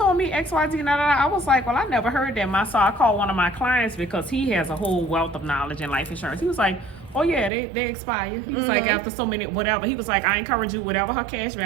me XYZ. I was like, well, I never heard that. So I called one of my clients because he has a whole wealth of knowledge in life insurance. He was like, oh yeah, they expire. He was like, after so many, whatever. He was like, I encourage you, whatever her cash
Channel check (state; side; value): drops out; left; at 7.5 s